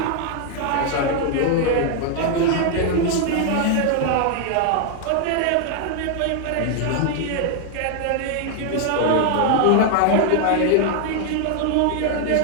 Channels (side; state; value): both; different; correlation 0.00